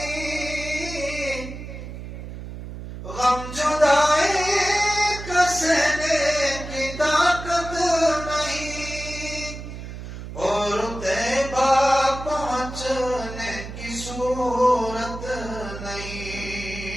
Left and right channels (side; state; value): right; noise; hum, 10 dB below the sound